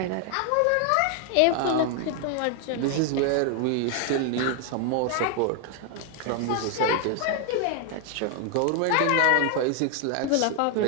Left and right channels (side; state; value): both; different; correlation 0.00